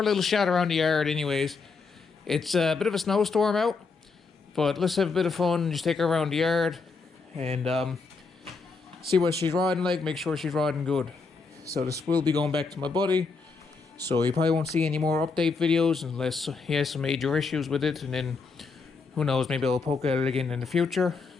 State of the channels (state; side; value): quieter; right; 4.5 dB